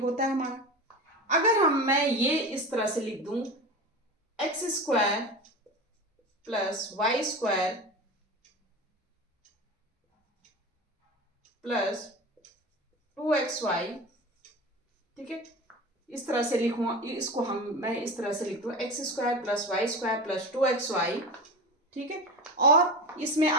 है हमारा। अगर मैं ये इस तरह से लिख दूं, x square plus y square plus 2xy, ठीक है, इस तरह से लिखूं, इसको मैं इस तरह से लिख दूं, x square plus y square plus 2xy। ठीक है, और इसमें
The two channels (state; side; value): normal; both; correlation 0.28